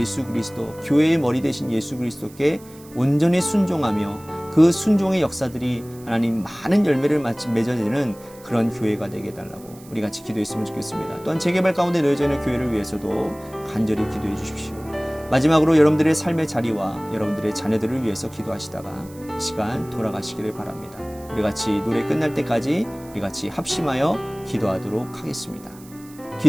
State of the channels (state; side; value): noise; right; hiss, 23 dB below the sound